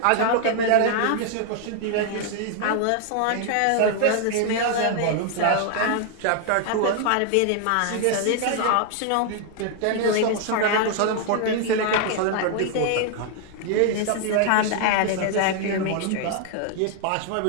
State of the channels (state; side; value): different; both; correlation 0.00